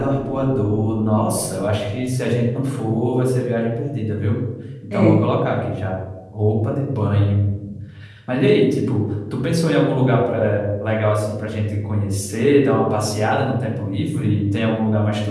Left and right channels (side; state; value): both; identical; correlation 1.00